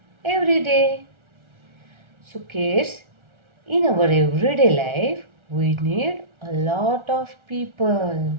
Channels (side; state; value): left; late; 1.4 ms